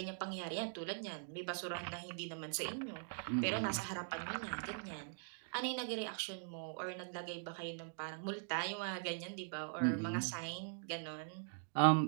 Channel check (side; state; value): left; silent; digital silence